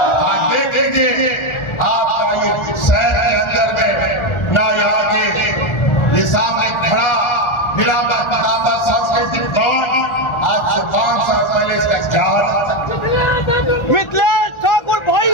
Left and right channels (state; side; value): late; right; 1.4 ms